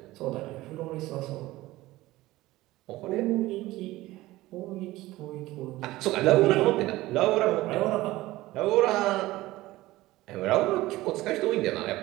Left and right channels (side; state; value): left; quieter; 17.8 dB